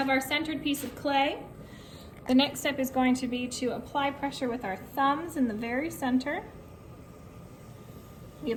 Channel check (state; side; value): identical; both; correlation 1.00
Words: our centered piece of clay. The next step is going to be to apply pressure with our thumbs in the very center. We